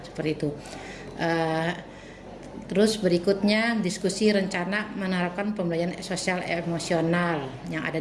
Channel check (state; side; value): identical; both; correlation 1.00